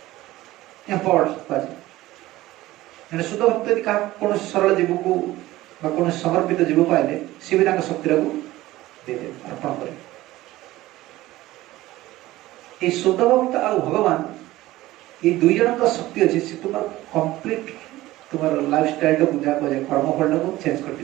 शुद्ध भक्त यदि कौन सरल जीव को कौन समर्पित जीव पाइले सी भी शक्ति को देदे अर्पण करे ये शुद्ध भक्त आ भगवान ये दुई जन का शक्ति अच्छी से तुम कंप्लीट तुम लाइफ स्टाइल को जहाँ कहे कर्मफल को चेंज कर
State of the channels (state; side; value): quieter; left; 17.0 dB